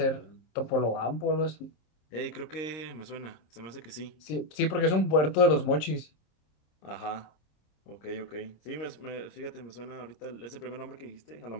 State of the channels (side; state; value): right; late; 26 ms